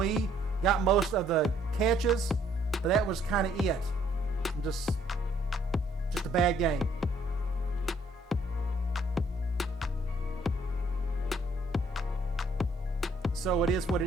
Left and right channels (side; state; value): both; normal; correlation 0.65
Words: got most of the catches, but that was kind of it. Just a bad game. So it is what